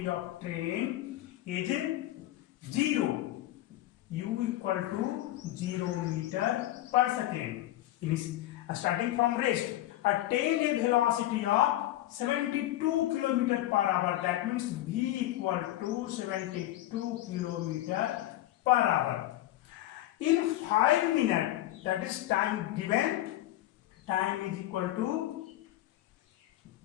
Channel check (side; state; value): right; quieter; 14.9 dB